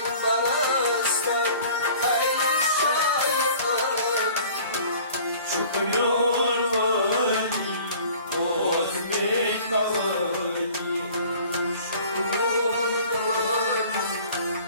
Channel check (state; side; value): inverted; both; correlation -0.48